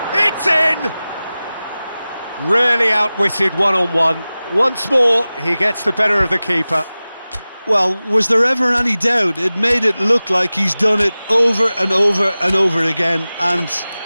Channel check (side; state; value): both; inverted; correlation -0.97